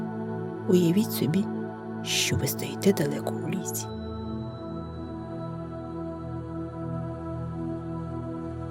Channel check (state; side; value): identical; both; correlation 1.00